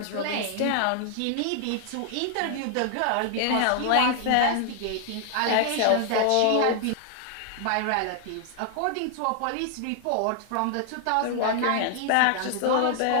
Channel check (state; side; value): different; both; correlation 0.00